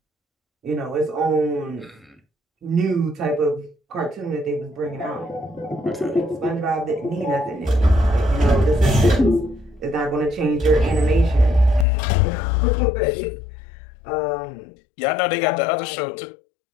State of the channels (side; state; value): right; drops out; at 11.9 s